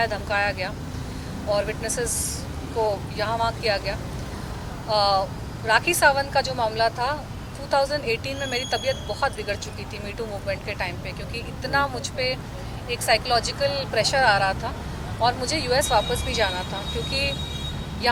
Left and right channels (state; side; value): identical; both; correlation 1.00